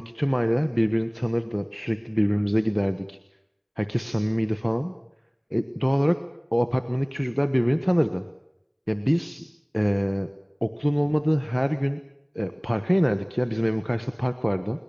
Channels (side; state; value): both; identical; correlation 1.00